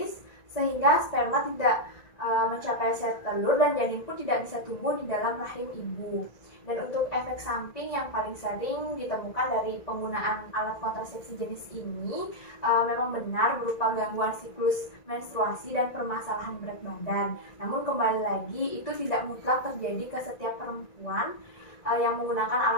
sehingga sperma tidak mencapai sel telur dan janin pun tidak bisa tumbuh di dalam rahim ibu. Dan untuk efek samping yang paling sering ditemukan dari penggunaan alat kontrasepsi jenis ini memang benar berupa gangguan siklus menstruasi dan permasalahan berat badan. Namun kembali lagi itu tidak mutlak terjadi ke setiap perempuan yang menggunakan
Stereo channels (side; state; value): right; late; 1.9 ms